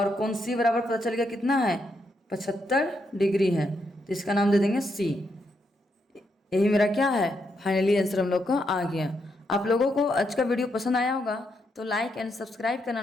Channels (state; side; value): normal; both; correlation 0.80